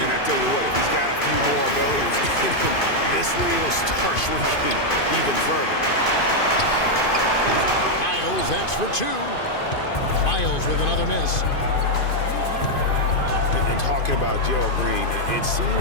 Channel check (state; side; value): late; right; 2.5 ms